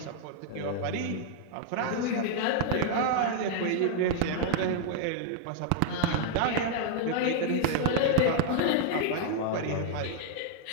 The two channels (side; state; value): both; different; correlation 0.00